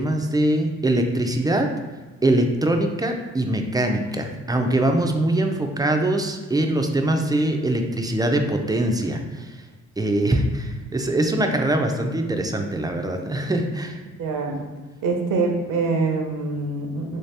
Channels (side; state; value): both; normal; correlation 0.66